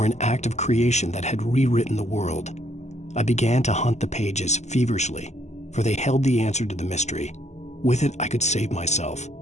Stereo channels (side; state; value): right; late; 0.33 ms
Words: an act of creation that had rewritten the world. I began to hunt the pages feverishly, for they held the answer to the mystery. With it, I could save myself.